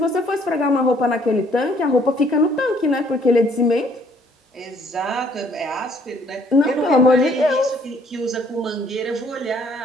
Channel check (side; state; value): both; normal; correlation 0.63